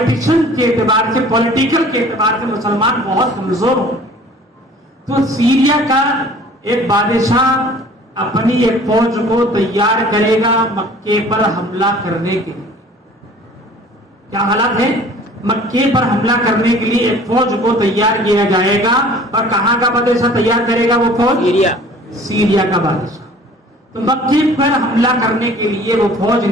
کے اعتبار سے پولیٹیکل کے اعتبار سے مسلمان بہت کمزور ہوں. تو سیریا کا ایک بادشاہ اپنی ایک فوج کو تیار کرے گا مکے پر حملہ کرنے کے لیے. کیا حالات ہے؟ مکے پر حملہ کرنے کے لیے ایک فوج کو تیار کیا جائے گا. اور کہاں کا بادشاہ تیار کرے گا وہ فوج؟ سیریا. سیریا کا بادشاہ. تو مکے پر حملہ کرنے کے لیے وہ فوج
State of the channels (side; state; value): both; normal; correlation 0.49